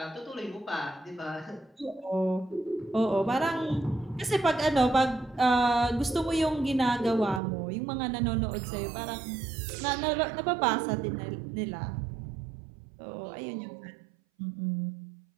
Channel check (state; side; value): drops out; left; at 7.4 s